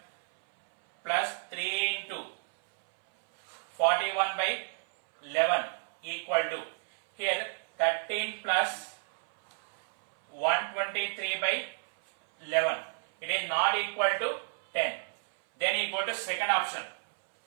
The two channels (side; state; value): left; silent; 57 dB below the other